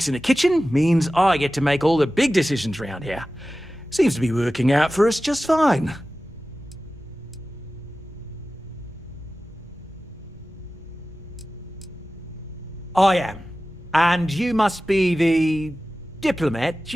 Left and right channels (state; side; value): normal; both; correlation 0.95